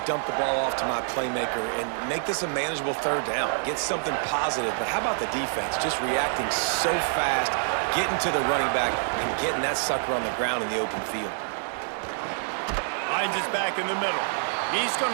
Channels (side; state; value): left; silent; digital silence